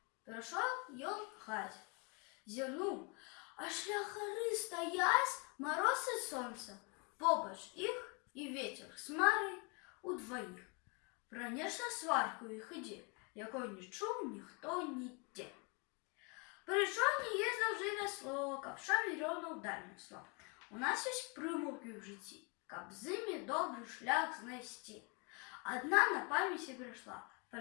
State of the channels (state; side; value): quieter; right; 32.7 dB